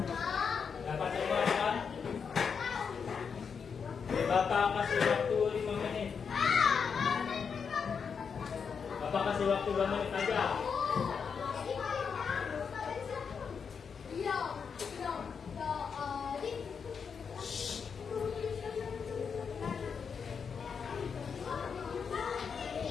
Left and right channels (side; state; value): right; quieter; 6.2 dB